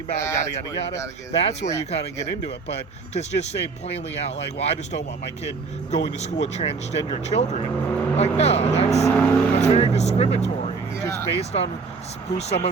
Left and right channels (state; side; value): quieter; left; 4.7 dB